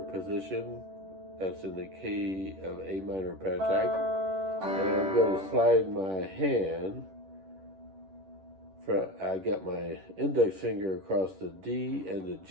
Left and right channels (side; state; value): left; late; 11 ms